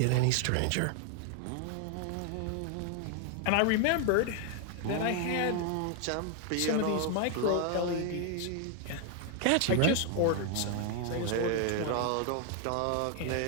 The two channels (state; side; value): different; both; correlation 0.00